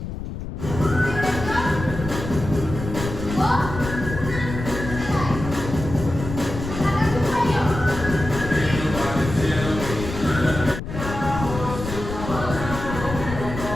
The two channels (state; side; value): noise; left; rumble, 7 dB below the sound